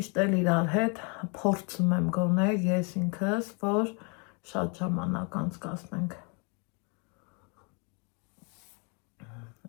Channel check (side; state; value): right; quieter; 34.7 dB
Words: էլ իրար հետ փորձում եմ գոնել ես ինքս, որ շատ ժամանակ անցկացնենք։